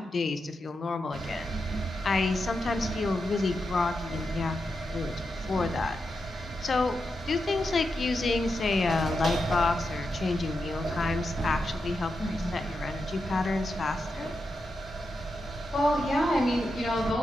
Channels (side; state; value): both; normal; correlation 0.87